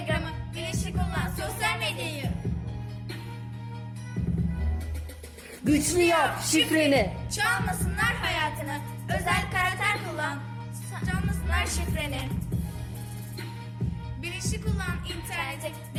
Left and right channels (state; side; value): identical; both; correlation 1.00